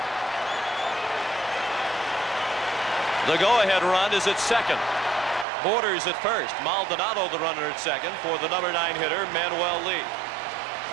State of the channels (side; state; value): left; drops out; at 5.5 s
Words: The go-ahead run is at second. Borders at first. Maldonado the runner at second for the number 9 hitter, Manuel Lee,